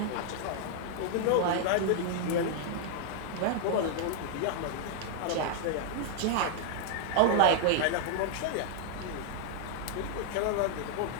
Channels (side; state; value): both; different; correlation 0.00